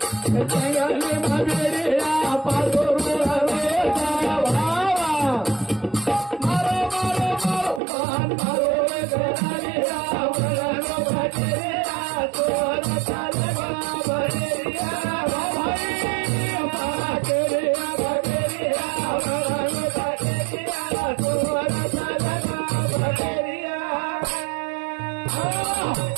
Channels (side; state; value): left; drops out; at 7.8 s